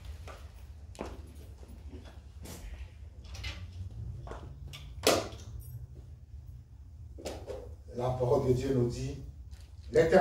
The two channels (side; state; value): both; identical; correlation 1.00